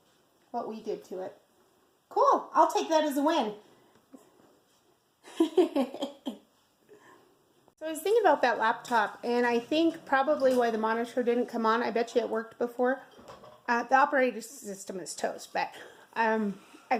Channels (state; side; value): identical; both; correlation 1.00